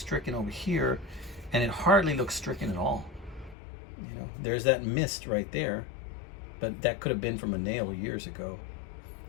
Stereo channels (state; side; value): drops out; right; at 3.6 s